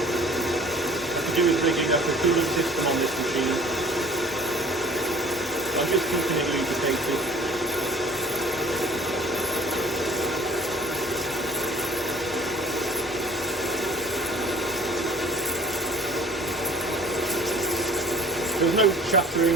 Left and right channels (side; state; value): both; normal; correlation 0.51